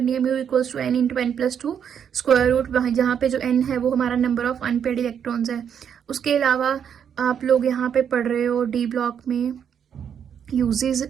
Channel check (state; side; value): quieter; left; 8.1 dB